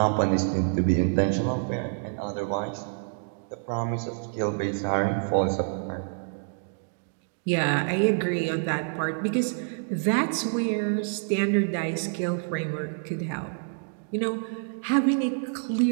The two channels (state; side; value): silent; left; digital silence